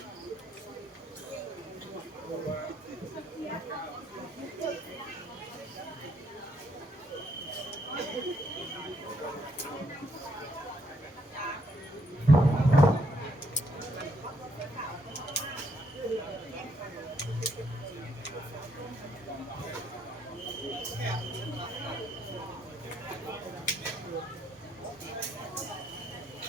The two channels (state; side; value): normal; both; correlation 0.72